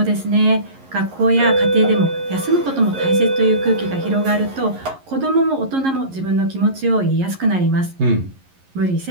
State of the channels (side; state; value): left; late; 11 ms